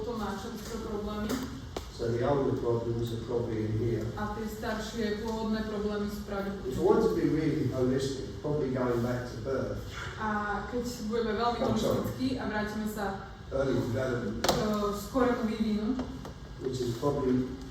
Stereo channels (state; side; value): identical; both; correlation 1.00